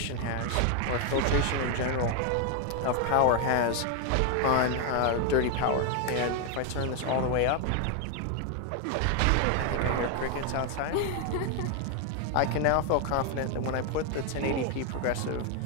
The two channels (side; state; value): both; different; correlation 0.00